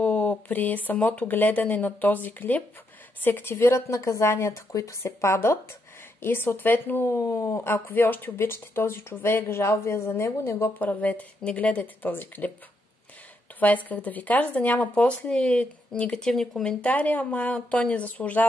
при самото гледане на този клип се активират наказанията, които се падат. И съответно, ако вие още обичате този човек, жал ви е за него, не го правете. Не гледайте този клип. Това исках да ви кажа, за да няма после негативни коментари, ама той не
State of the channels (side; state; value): both; normal; correlation 0.78